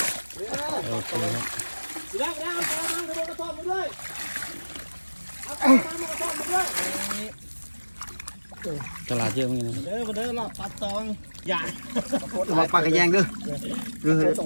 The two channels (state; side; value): inverted; both; correlation -1.00